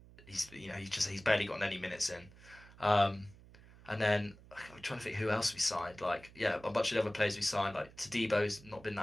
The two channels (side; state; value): right; noise; hum, 21 dB below the sound